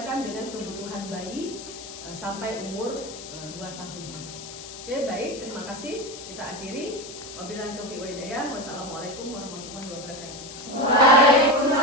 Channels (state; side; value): noise; left; hiss, 12 dB below the sound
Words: dengan kebutuhan bayi sampai umur 2 tahun. Oke, baik, terima kasih. Kita akhiri. Wabillahi taufiq wa hidayah. Wassalamualaikum warahmatullahi wabarakatuh.